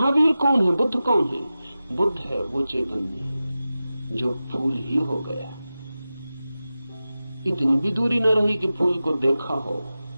कौन है, बुद्ध कौन है? बुद्ध है वो चैतन्य जो फूल ही हो गया। इतनी भी दूरी न रही कि फूल को देखा हो,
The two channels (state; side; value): inverted; both; correlation -0.94